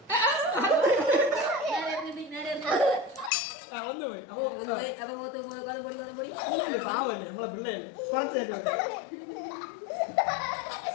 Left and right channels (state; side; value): drops out; right; at 3.3 s